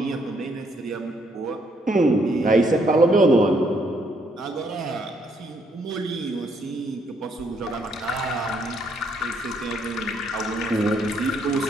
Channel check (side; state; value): both; normal; correlation 0.71